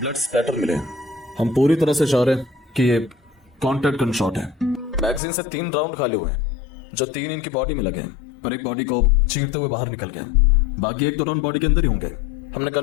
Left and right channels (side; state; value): right; drops out; at 5.2 s